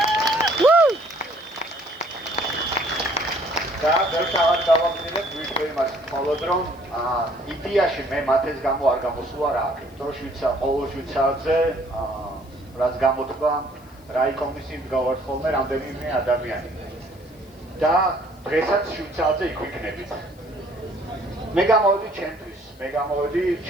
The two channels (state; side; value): noise; left; hiss, 29 dB below the sound